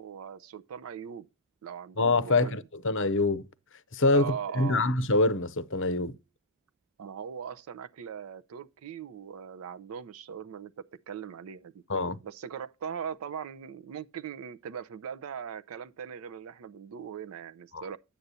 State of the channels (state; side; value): normal; both; correlation -0.18